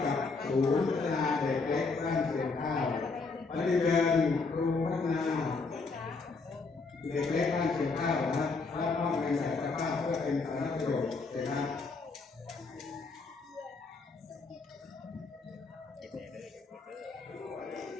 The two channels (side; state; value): right; quieter; 4.2 dB